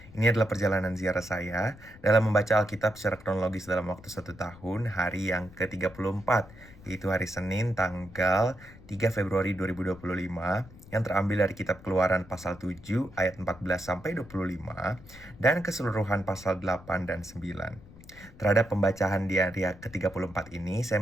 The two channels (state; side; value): noise; left; rumble, 20 dB below the sound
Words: Ini adalah perjalanan ziarah saya dalam membaca Alkitab secara kronologis dalam waktu 1 tahun, hari yang ke-34, yaitu hari Senin tanggal 3 Februari 2025, yang terambil dari kitab Keluaran pasal 7 ayat 14-25, dan keseluruhan pasal 8 dan 9. Terhadap pembacaan di hari ke-34 ini, saya